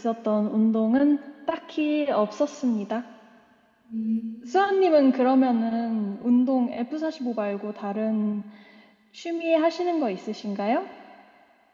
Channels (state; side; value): identical; both; correlation 1.00